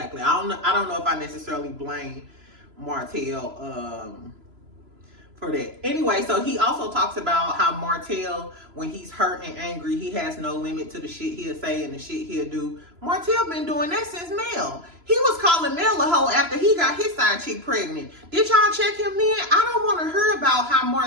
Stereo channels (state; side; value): late; left; 3.0 ms